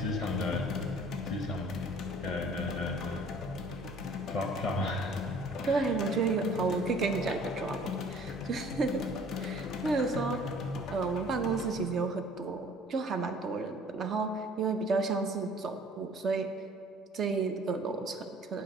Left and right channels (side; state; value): both; normal; correlation 0.52